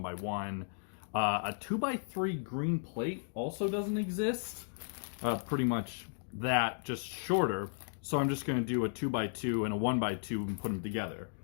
A 2x3 green plate also doesn't exist. Pretty much that, just shorter, so I'm just going to do a 2x2 and a 1x2 and put them together.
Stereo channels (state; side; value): silent; right; digital silence